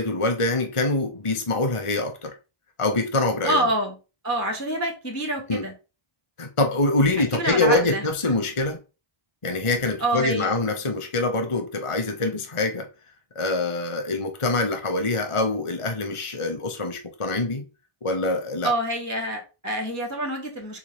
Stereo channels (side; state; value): right; late; 1.4 ms